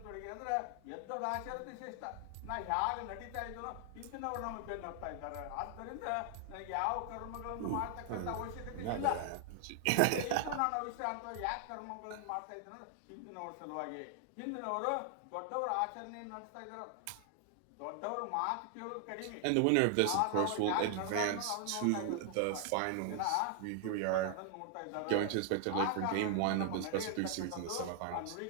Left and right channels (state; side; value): different; both; correlation 0.00